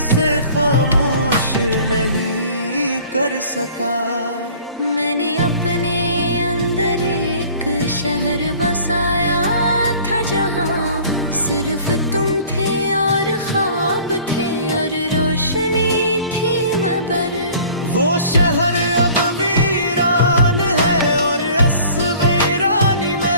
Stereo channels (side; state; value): both; inverted; correlation -0.48